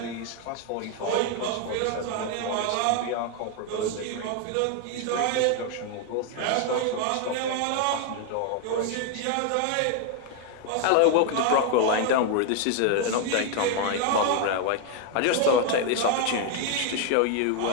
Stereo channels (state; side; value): different; both; correlation 0.01